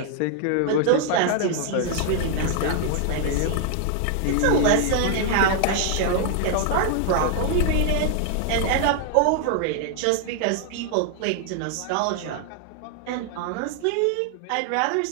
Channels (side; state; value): both; different; correlation 0.00